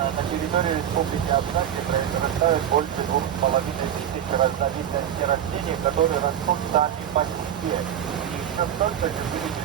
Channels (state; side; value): quieter; left; 9.9 dB